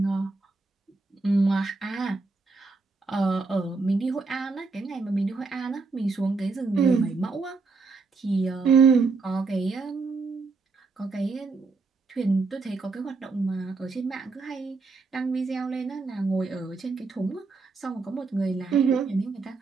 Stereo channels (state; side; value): quieter; left; 4.1 dB